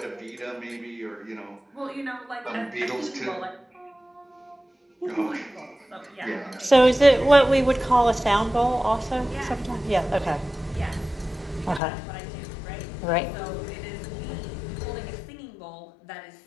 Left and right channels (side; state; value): right; drops out; at 11.8 s